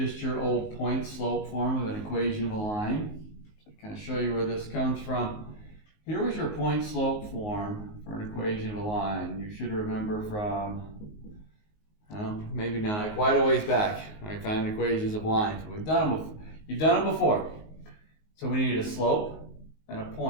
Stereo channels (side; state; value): right; late; 19 ms